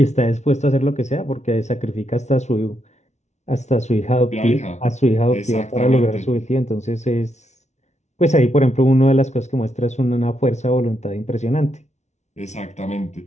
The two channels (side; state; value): right; late; 0.32 ms